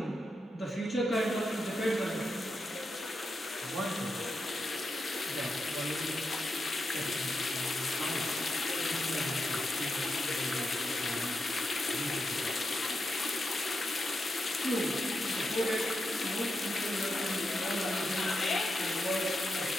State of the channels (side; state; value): both; normal; correlation 0.86